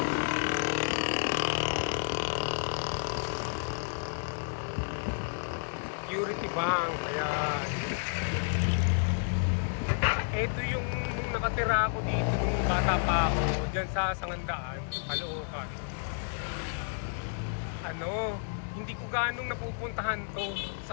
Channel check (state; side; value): silent; right; digital silence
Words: Security Bank, ayan. Ito yung nung nakatira ako dito nung bata pa ako, dyan sa Sangandaan, Caloocan. Hindi ko ganong napupuntahan to.